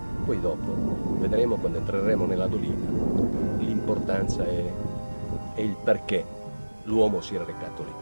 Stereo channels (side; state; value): both; inverted; correlation -1.00